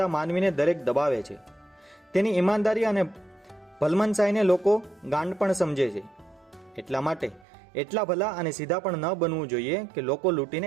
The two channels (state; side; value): drops out; left; at 7.5 s